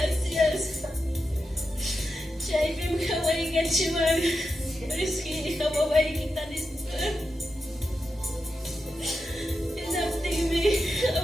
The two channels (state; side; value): normal; both; correlation 0.88